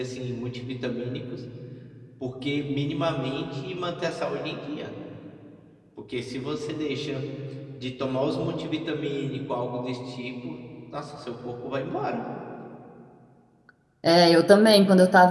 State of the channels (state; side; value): identical; both; correlation 1.00